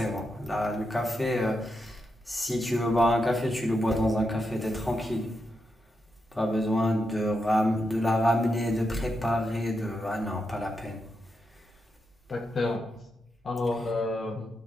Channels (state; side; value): normal; both; correlation 0.85